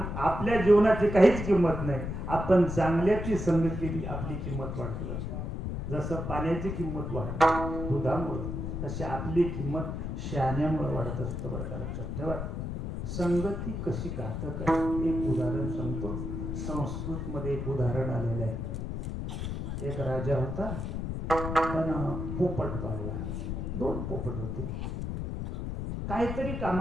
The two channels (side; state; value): left; noise; rumble, 4 dB below the sound